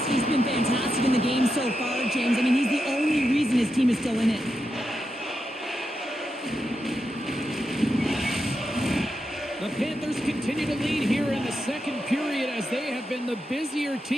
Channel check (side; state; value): both; normal; correlation 0.86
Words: been fantastic in the game so far, James. I mean, he's the only reason his team is still in it. The Panthers continue to lead here in the second period as they have been the busier